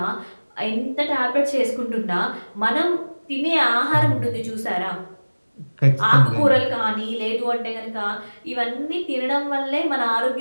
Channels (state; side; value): inverted; both; correlation -1.00